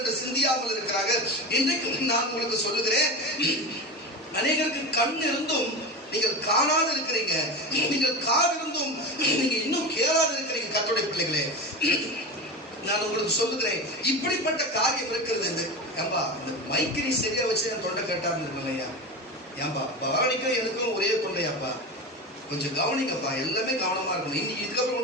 சிந்தியாமல் இருக்கிறாங்க. இன்றைக்கு நான் உங்களுக்கு சொல்லுகிறேன், அநேகருக்கு கண் இருந்தும் நீங்கள் காணாது இருக்கிறீங்க, நீங்கள் காது இருந்தும் நீங்க இன்னும் கேளாது இருக்கிறீங்க. கர்த்தருடைய பிள்ளைகளே, நான் உங்களுக்கு சொல்லுகிறேன், இப்படிப்பட்ட காரியம் இருக்கிறது. ஏம்பா இந்த மைக்கு நீ சரியா வச்சு என் தொண்டை கேட்டாருன்னு இருக்கலையா? ஏம்பா பவானிக்கும் எனக்கும் ஒரே தொண்டையாப்பா, கொஞ்சம் கவனிங்கப்பா, எல்லாமே கவனமா இருக்கணும். இன்னைக்கு இதுக்கப்புறம்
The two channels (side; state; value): both; normal; correlation 0.25